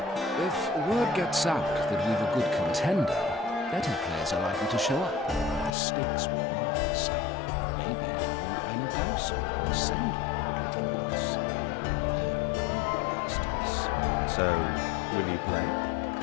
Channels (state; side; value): drops out; right; at 5.8 s